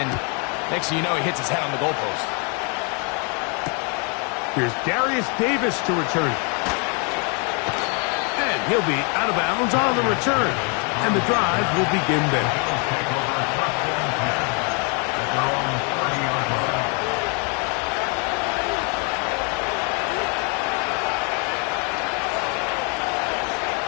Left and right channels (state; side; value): quieter; right; 36.0 dB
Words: next thing you know, he hits his head on the goalpost. Here's Darius Davis to return. And he'll be out of bounds on the return. And the drive will begin there.